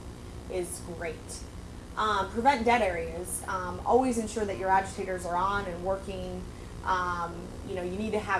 great. Prevent dead areas. Always ensure that your agitators are on and working. You need to have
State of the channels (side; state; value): both; identical; correlation 1.00